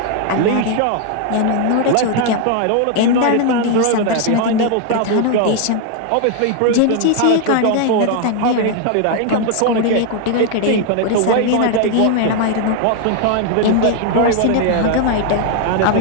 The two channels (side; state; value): both; different; correlation 0.00